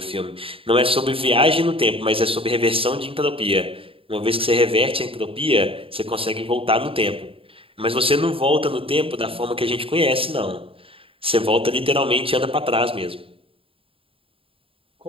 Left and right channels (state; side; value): late; left; 0.27 ms